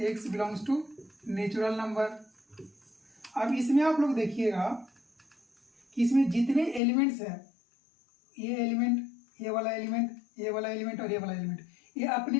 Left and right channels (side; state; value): right; drops out; at 6.8 s